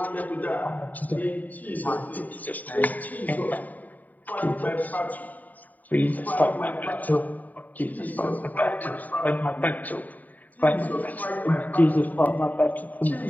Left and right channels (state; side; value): late; right; 0.080 ms